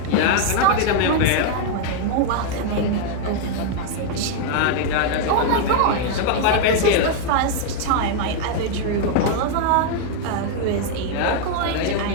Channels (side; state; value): both; different; correlation 0.00